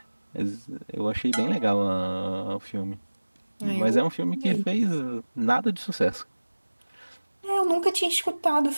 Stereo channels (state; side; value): inverted; both; correlation -1.00